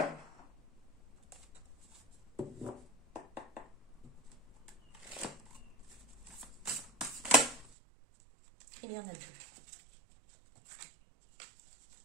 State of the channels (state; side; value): drops out; left; at 7.8 s